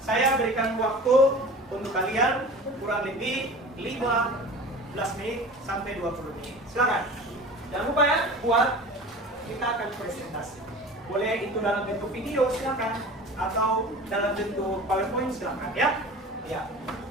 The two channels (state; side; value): normal; both; correlation 0.38